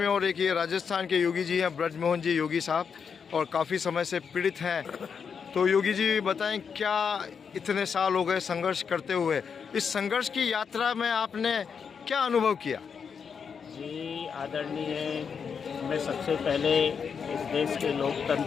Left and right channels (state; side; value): quieter; right; 6.4 dB